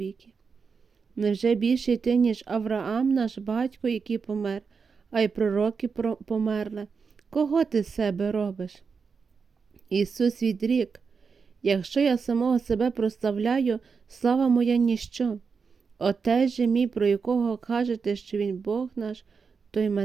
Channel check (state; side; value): quieter; left; 5.4 dB